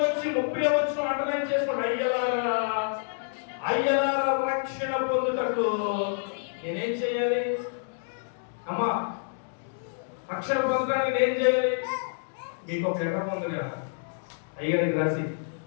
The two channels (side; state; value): right; silent; digital silence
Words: వచ్చి 30వ వచనం అండర్లైన్ చేసుకోండి. అయ్యలారా రక్షణ పొందుటకు నేనేం చేయాలి? అమ్మా, రక్షణ పొందడానికి నేను చేయాలి? మీకు ఒక లెటర్ పొంది కదా అయ్యగారికి రాసి,